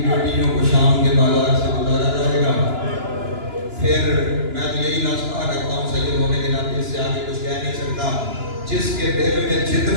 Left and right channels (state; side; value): late; left; 2.9 ms